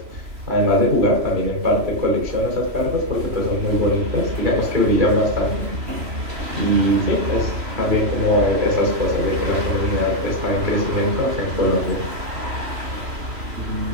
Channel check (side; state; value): left; late; 3.0 ms